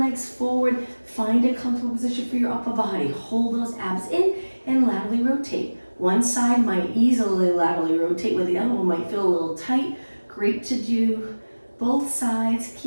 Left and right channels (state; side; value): inverted; both; correlation -1.00